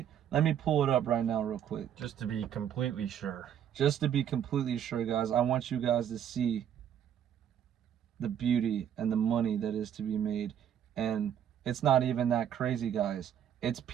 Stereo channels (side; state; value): left; quieter; 9.5 dB